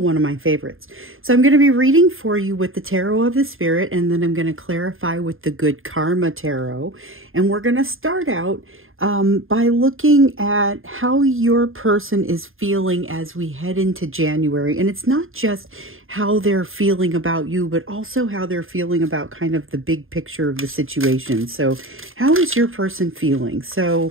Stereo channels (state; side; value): late; left; 0.60 ms